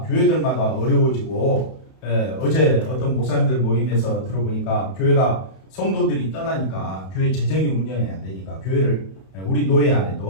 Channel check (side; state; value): right; late; 31 ms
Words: 교회들마다 어려워지고, 어제 어떤 목사님들 모임에서 들어보니까 교회가 성도들이 떠나니까 교회 재정이 운영이 안 되니까 교회를, 우리 노예